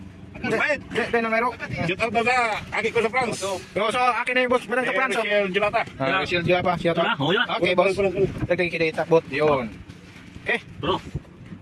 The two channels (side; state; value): both; identical; correlation 1.00